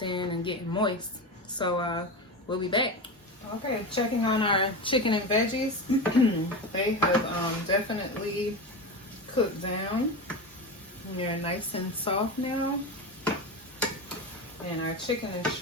in and getting moist. So we'll be back. Okay, checking on our chicken and veggies. They have definitely cooked down. They're nice and soft now. And our chicken is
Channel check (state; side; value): normal; both; correlation 0.22